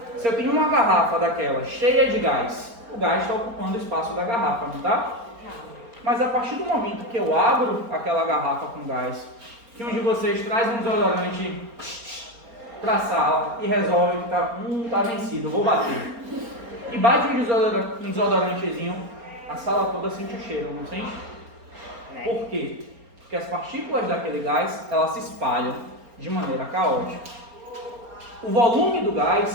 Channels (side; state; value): left; late; 4.3 ms